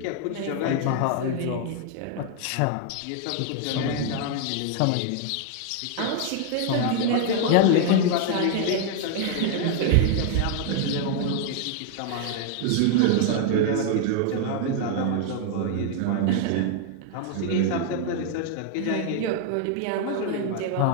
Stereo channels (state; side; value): different; both; correlation 0.00